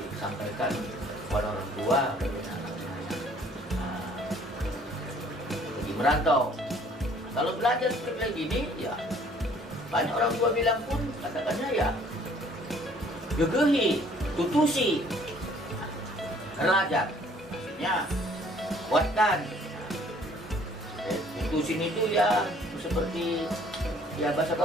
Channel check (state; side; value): normal; both; correlation 0.58